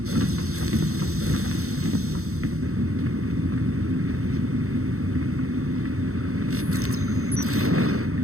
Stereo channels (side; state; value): left; late; 0.64 ms